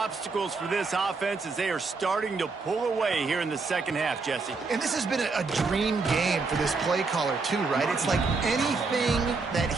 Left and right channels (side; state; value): left; quieter; 4.2 dB